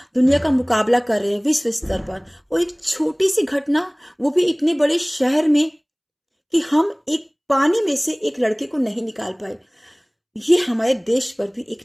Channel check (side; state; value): both; identical; correlation 1.00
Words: दुनिया का मुकाबला कर रहे हैं विश्व स्तर पर, और एक छोटी सी घटना, वो भी इतने बड़े शहर में, कि हम एक पानी में से एक लड़के को नहीं निकाल पाए, ये हमारे देश पर भी